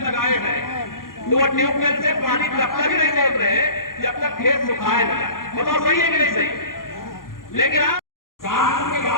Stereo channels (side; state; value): right; late; 0.91 ms